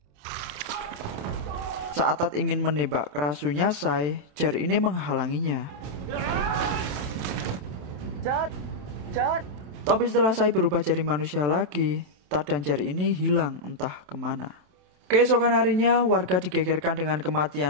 Saat Tat ingin menembak kerasunya Sai, Jer ini menghalanginya. Tapi setelah Sai berubah jadi manusia lagi, Tat dan Jer ini hilang entah kemana. Keesokan harinya, warga digegerkan dengan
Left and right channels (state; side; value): late; left; 27 ms